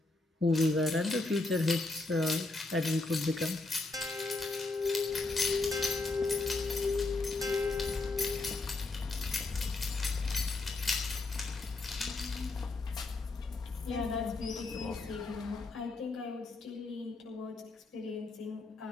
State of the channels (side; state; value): right; quieter; 3.2 dB